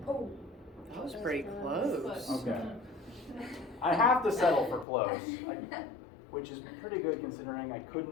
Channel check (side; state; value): right; drops out; at 4.9 s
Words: Oh, that was pretty close. Okay. I have to settle for close, which is pretty good considering I